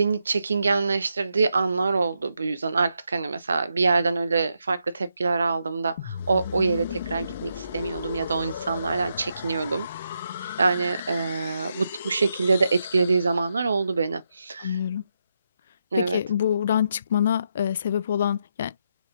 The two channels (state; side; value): inverted; both; correlation -0.82